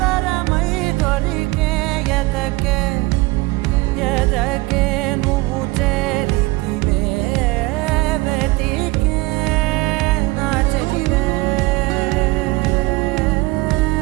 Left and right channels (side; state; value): left; quieter; 22.2 dB